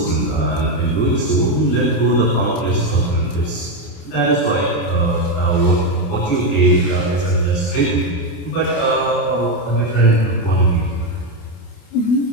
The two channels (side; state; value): right; late; 28 ms